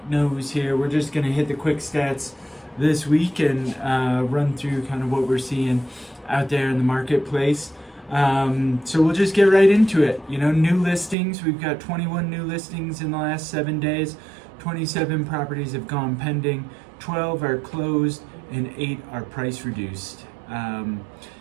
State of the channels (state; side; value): drops out; left; at 11.2 s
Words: Nose here. We're just going to hit the quick stats this week and run through kind of what we're seeing out there in the marketplace. So we'll just get right into it. You know, new listings. We've got 21 new listings in the last 7 days. 27 properties have gone pending. 12 are closed and 8 are price reduced.